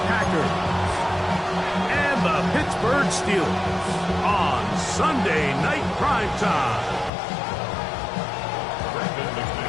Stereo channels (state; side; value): drops out; right; at 7.1 s